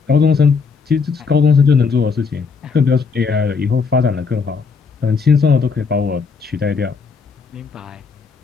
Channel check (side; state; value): right; quieter; 5.1 dB